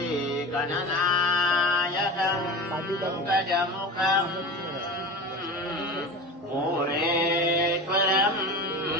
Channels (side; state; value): both; normal; correlation 0.29